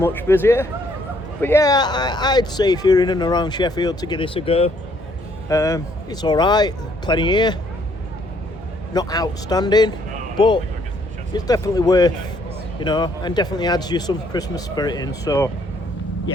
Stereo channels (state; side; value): normal; both; correlation 0.67